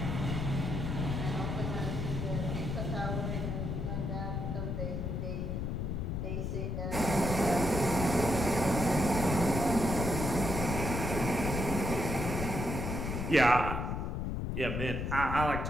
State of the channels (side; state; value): left; noise; rumble, 2 dB below the sound